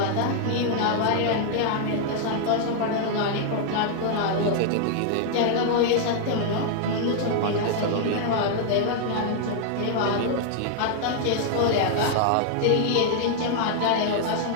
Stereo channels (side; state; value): both; different; correlation -0.01